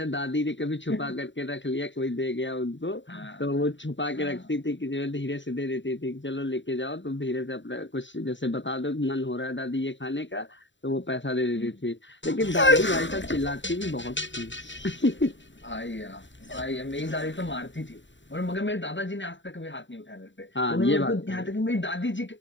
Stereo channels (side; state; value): right; late; 0.54 ms